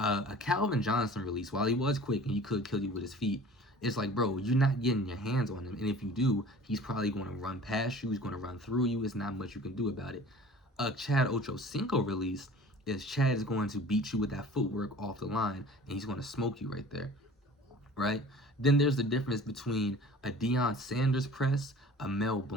Calvin Johnson release, while he was quick and he could kill you with his feet, it's like, bro, you're not getting your hands on him, and if you do, he's probably going to run past you. He's going to run through you. It's not much you can do about it. A Chad Ochocinco release is Chad is going to beat you with that footwork off the line, and he's going to smoke you right there, right? Then there's the difference between a Deion Sanders press, a Mel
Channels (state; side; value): normal; both; correlation 0.44